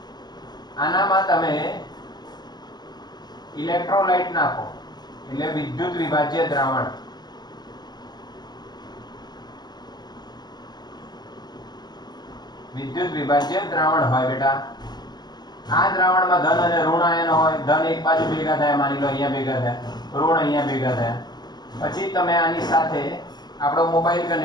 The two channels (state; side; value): late; right; 0.20 ms